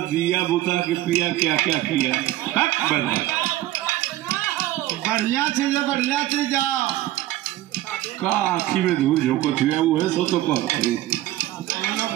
बुता के पिया क्या क्या किया। बढ़िया चीज है, बढ़िया चीज का आखी में धूल झोंकत हुआ वो है सो तो कहते।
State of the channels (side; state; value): left; quieter; 15.2 dB